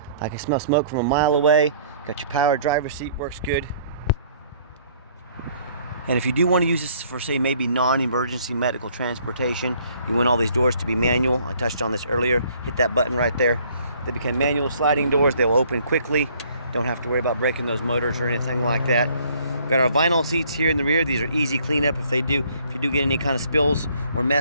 I can smell smoke from a mile away. Got your power driver's seat, works good. And if you do want to use this for, say, maybe non-emergency medical transportation, you want all these doors to be manual. I touched on this earlier. Hit that button right there. They become manual sliding doors. They'll open quickly. Don't have to worry about breaking those motors or anything like that. Got our vinyl seats here in the rear. These are easy cleanup if you do get any kind of spills or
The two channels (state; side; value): inverted; both; correlation -0.61